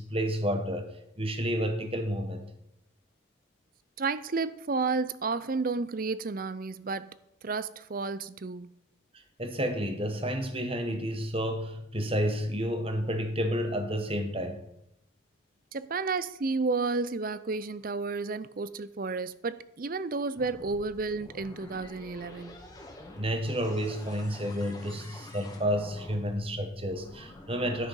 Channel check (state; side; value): normal; both; correlation 0.42